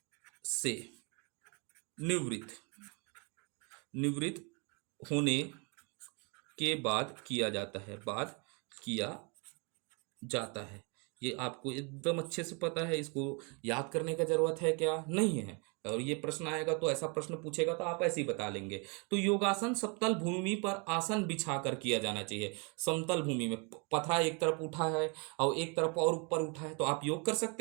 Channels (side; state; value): left; quieter; 33.3 dB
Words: से निवृत्त निवृत्त होने के बाद किया जाता है, बाद किया जाता है। ये आपको एकदम अच्छे से पता है, इसको याद करने का जरूरत है क्या, नहीं है। और ये प्रश्न आएगा तो ऐसा प्रश्न पूछेगा तो आप ऐसे ही बता लेंगे। तो योगासन समतल भूमि पर आसन बिछाकर किया जाना चाहिए। समतल भूमि में पथरा एक तरफ उठा है और एक तरफ और ऊपर उठा है, तो आप योग कर